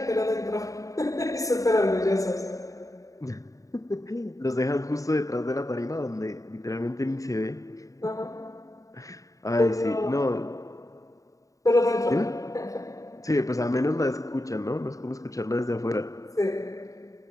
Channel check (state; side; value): late; right; 0.16 ms